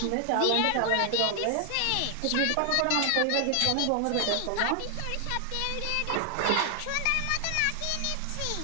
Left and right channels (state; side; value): different; both; correlation 0.00